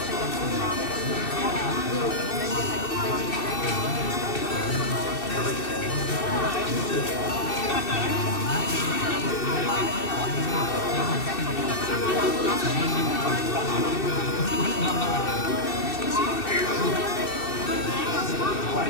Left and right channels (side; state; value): right; late; 2.7 ms